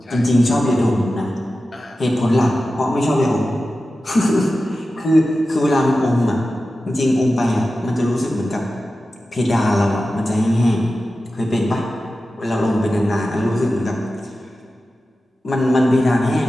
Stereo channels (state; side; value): normal; both; correlation 0.94